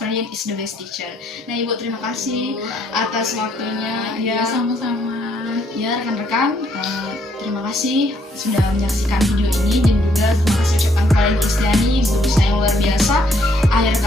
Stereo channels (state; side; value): normal; both; correlation 0.69